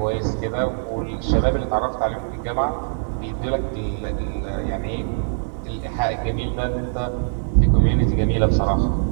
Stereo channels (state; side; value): silent; left; digital silence